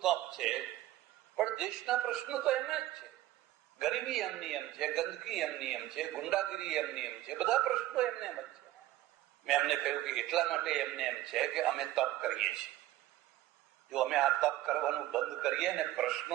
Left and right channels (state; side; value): quieter; left; 15.3 dB